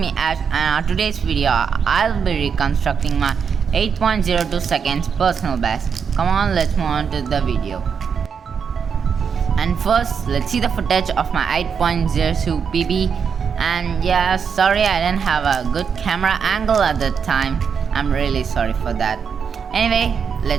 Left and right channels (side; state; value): left; quieter; 6.6 dB